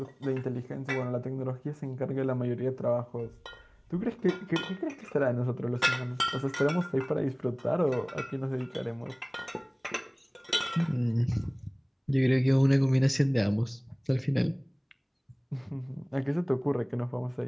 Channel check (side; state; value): both; identical; correlation 1.00